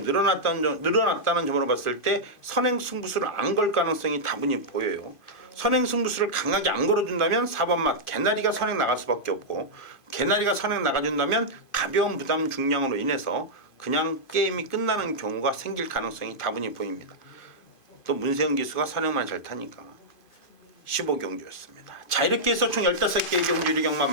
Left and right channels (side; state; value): right; late; 2.5 ms